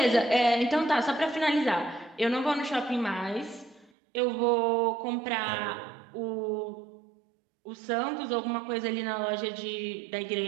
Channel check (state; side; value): drops out; left; at 3.9 s